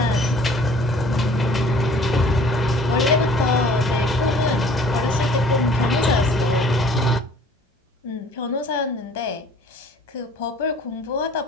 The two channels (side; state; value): both; normal; correlation 0.52